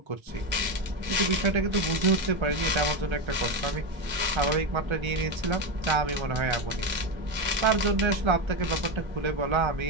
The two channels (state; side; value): late; left; 1.3 ms